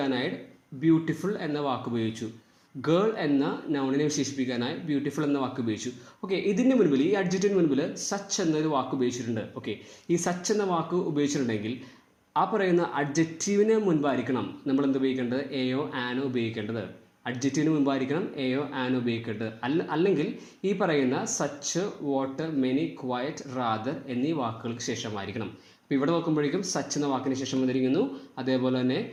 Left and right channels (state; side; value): identical; both; correlation 1.00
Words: ബ്യൂട്ടിഫുൾ എന്ന വാക്ക് ഉപയോഗിച്ചു. ഗേൾ എന്ന നൗണിനെ വിശേഷിപ്പിക്കാനായി ബ്യൂട്ടിഫുൾ എന്ന വാക്ക് ഉപയോഗിച്ചു. ഓക്കെ, ഇതിൻ്റെ മുൻപിൽ, ഈ അഡ്ജക്റ്റിന് മുൻപിൽ സച്ച് എന്നൊരു വാക്ക് ഉപയോഗിച്ചിട്ടുണ്ട്. ഓക്കെ, ഈ സച്ച് എന്ന വാക്ക് ഉപയോഗിച്ചിട്ടുണ്ടെങ്കിൽ ആ പറയുന്ന അഡ്ജക്റ്റീവിന് മുൻപായിരിക്കണം നമ്മൾ എന്ത് ഉപയോഗിക്കേണ്ടത്? എയോ ആനോ ഉപയോഗിക്കേണ്ടത്. അഡ്ജക്റ്റീവിന് മുമ്പായിരിക്കണം എയോ ആനോ ഉപയോഗിക്കേണ്ടത്. അല്ലെങ്കിൽ ഈ പറയുന്ന such what many quiet rather എന്നീ വാക്കുകൾക്ക് ശേഷമായിരിക്കണം. അപ്പോൾ ഇവിടെ നോക്കുമ്പോഴേക്കും സച്ച് എന്ന വാക്കിന് ശേഷം വന്നിരിക്കുന്നു. അതേപോലെ തന്നെ